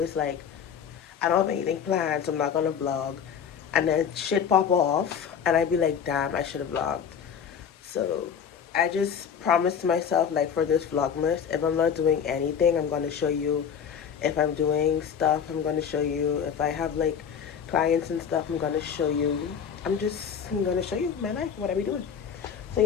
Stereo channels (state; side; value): quieter; right; 7.5 dB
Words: like, I don't have anything planned, so I'm not gonna vlog. And then shit pop off, and I'd be like, damn, I should have vlogged. So I just promised myself, like, for this Vlogmas, if I'm not doing anything, I'm gonna show you. If I'm doing stuff, I'm gonna show you. If I have like clients and stuff, I'm gonna show you. I'm gonna show you my life, what I be doing. So